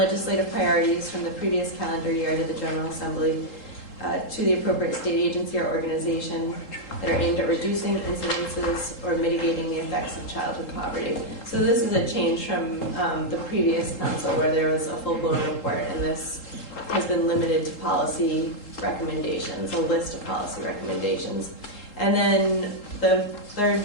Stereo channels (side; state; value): right; late; 3.8 ms